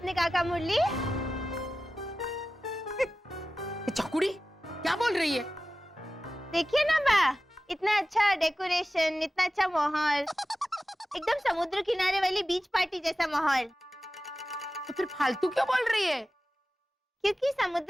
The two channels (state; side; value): normal; both; correlation 0.95